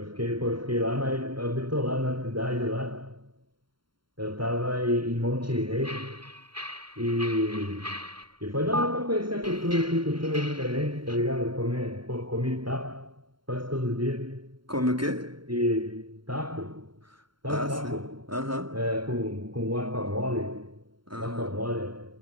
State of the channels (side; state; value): left; late; 0.73 ms